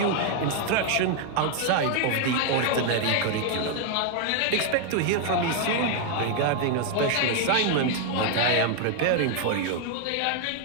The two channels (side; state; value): both; different; correlation 0.00